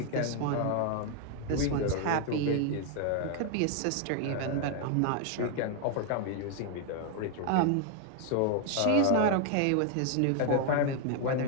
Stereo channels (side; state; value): both; different; correlation 0.01